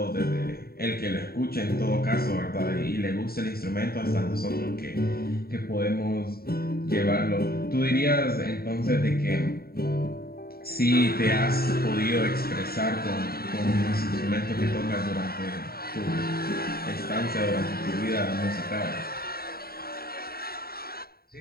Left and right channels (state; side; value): late; right; 0.44 ms